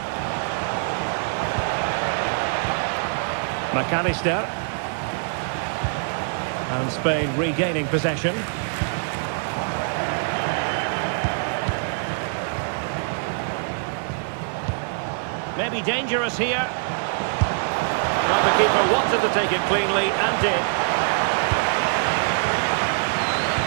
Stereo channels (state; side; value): silent; left; 56 dB below the other